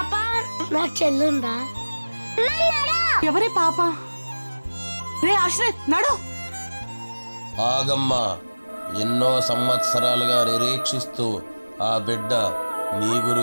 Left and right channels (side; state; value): both; inverted; correlation -1.00